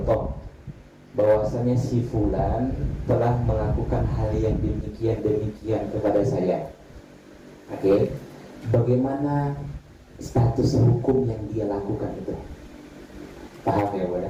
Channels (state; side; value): identical; both; correlation 1.00